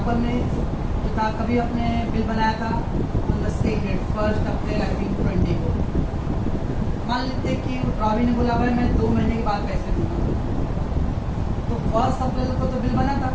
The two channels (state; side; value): identical; both; correlation 1.00